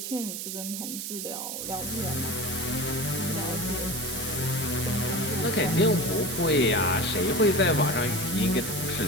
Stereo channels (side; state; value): right; noise; hiss, 5 dB below the sound